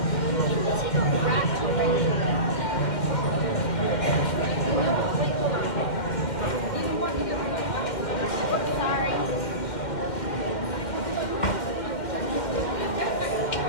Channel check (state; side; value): late; right; 2.1 ms